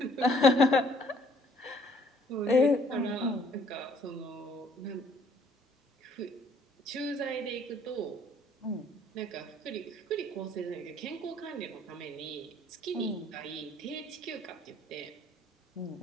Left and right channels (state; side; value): normal; both; correlation 0.61